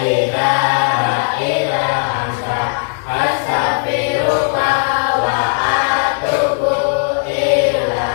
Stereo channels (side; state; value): right; silent; digital silence